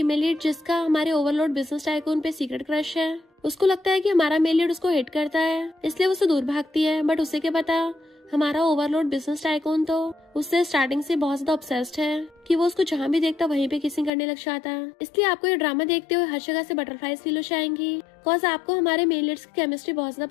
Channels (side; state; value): right; drops out; at 14.1 s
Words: लीड, जिसका हमारे ओवरलोड बिजनेस टाइकून पे सीक्रेट क्रश है, उसको लगता है कि हमारा मेल लीड उसको हिट करता है, इसलिए वो उससे दूर भागती है। बट उसे क्या पता, हमारा ओवरलोड बिजनेस टाइकून तो उससे स्टार्टिंग से बहुत ज्यादा ऑब्सेस्ड है कि वो उसको जहाँ भी देखता वहीं पे किसिंग करने लग जाता है। इसलिए आपको ये ड्रामा देखते हुए हर जगह से बटरफ्लाइज फील हो जाएंगी, बिकॉज आपको हमारे मेल लीड्स की केमिस्ट्री बहुत